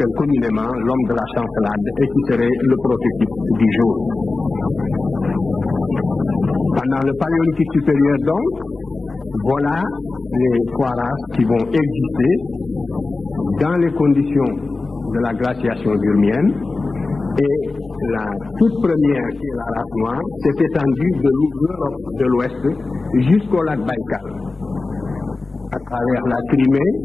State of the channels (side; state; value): right; quieter; 3.6 dB